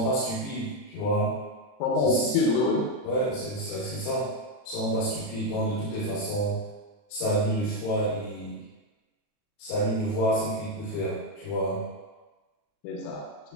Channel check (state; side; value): late; right; 40 ms